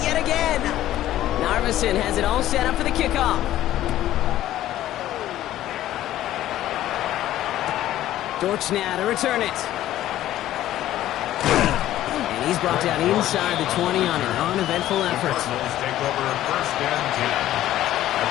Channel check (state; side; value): quieter; right; 13.5 dB